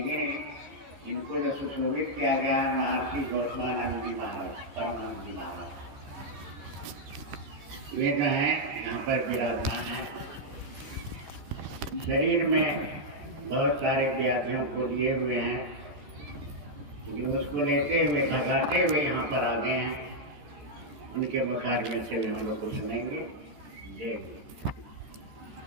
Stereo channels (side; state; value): left; late; 14 ms